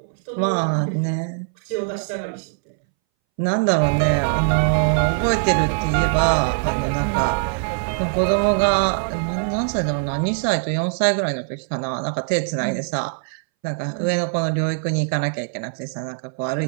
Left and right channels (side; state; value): left; silent; 63 dB below the other